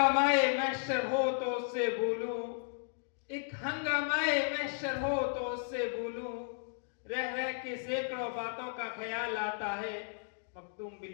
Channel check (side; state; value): right; silent; digital silence